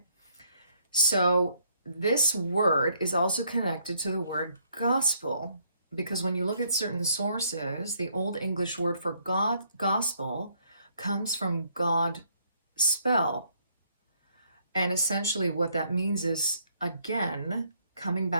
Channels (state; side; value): inverted; both; correlation -0.68